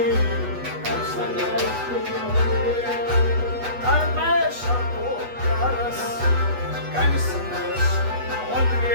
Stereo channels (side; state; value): left; late; 8.1 ms